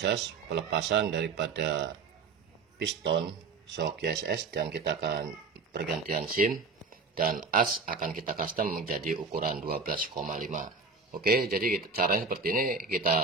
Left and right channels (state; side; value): quieter; left; 4.5 dB